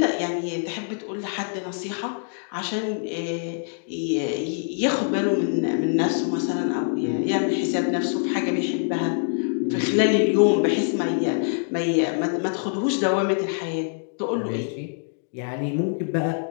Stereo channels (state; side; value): silent; right; digital silence